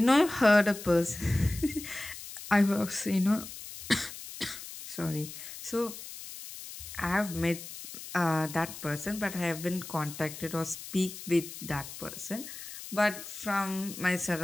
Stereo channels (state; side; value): noise; left; hiss, 12 dB below the sound